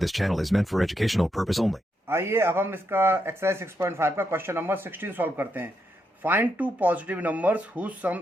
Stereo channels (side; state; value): both; normal; correlation 0.81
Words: channel is meant for educational purpose only. आइए अब हम इसका exercise 6.5 का question number 16 solve करते हैं। Find two positive numbers whose